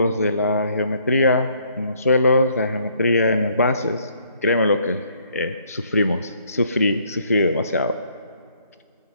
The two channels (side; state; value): both; inverted; correlation -0.66